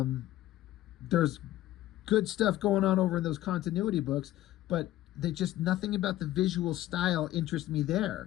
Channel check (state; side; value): quieter; right; 14.7 dB